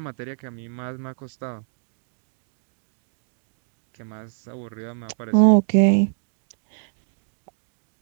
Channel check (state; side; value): silent; left; 61 dB below the other